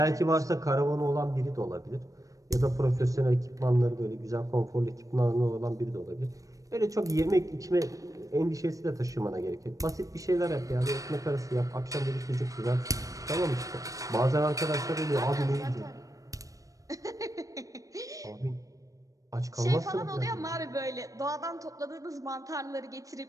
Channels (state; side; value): late; left; 0.16 ms